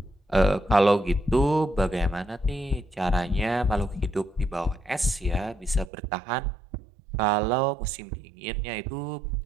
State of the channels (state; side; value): drops out; left; at 5.9 s